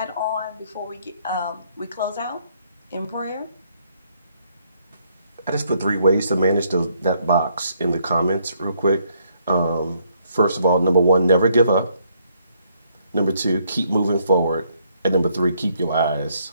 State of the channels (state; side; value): inverted; both; correlation -0.70